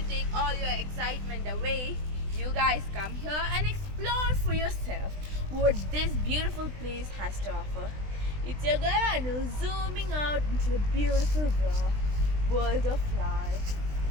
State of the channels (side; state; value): left; late; 20 ms